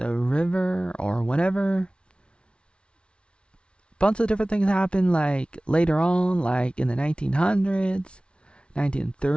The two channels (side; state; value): right; late; 0.058 ms